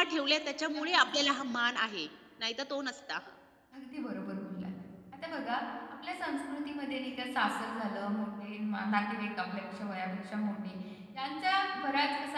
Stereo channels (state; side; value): identical; both; correlation 1.00